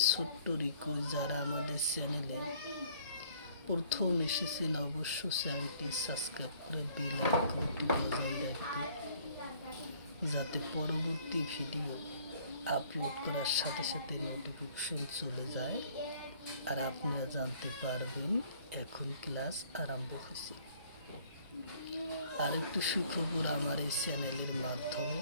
ছোট্ট রিকোয়েস্ট, যারা আমাদের চ্যানেলে প্রথম এসেছেন অবশ্যই চ্যানেলটি সাবস্ক্রাইব করে বেল আইকনটি বজায় রাখবেন, যাতে পরবর্তী ভিডিও আপলোড করার সাথে সাথে নোটিফিকেশন চলে যায় আর আপনারা জানতে পারবেন এখন ক্লাস আরম্ভ হয়েছে। আরেকটু সুখবর, আমার এই চ্যানেলের মাধ্যমে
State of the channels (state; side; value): inverted; both; correlation -0.58